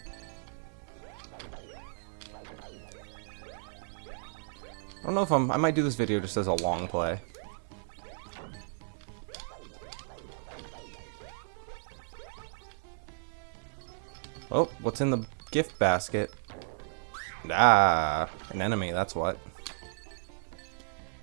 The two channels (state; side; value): silent; left; digital silence